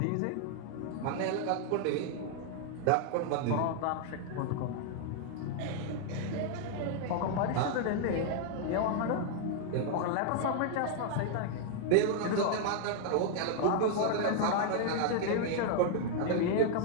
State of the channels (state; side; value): different; both; correlation 0.00